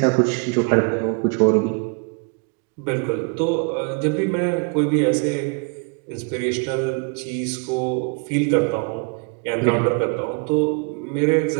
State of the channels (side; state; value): left; quieter; 34.0 dB